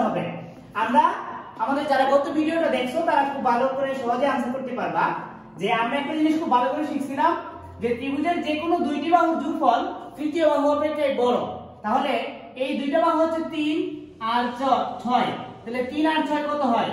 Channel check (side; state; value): both; identical; correlation 1.00